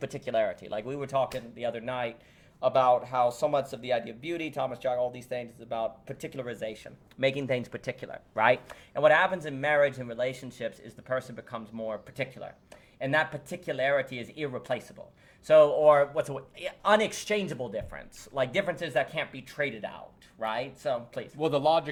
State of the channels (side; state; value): both; identical; correlation 1.00